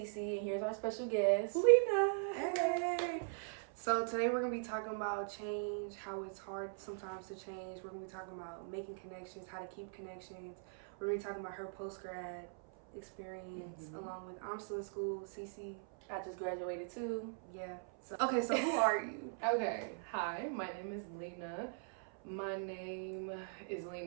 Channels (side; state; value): left; silent; 51 dB below the other